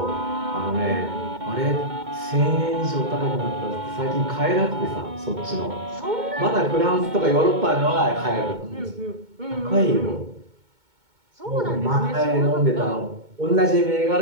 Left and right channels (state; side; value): late; left; 2.2 ms